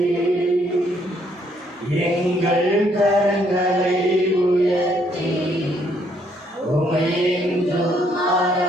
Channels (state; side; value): normal; both; correlation 0.69